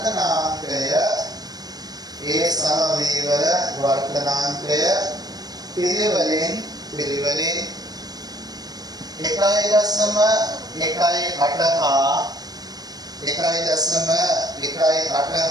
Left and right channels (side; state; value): left; late; 0.19 ms